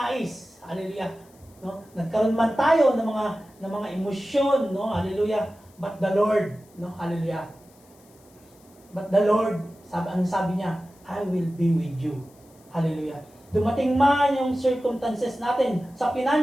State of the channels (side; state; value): left; noise; hiss, 29 dB below the sound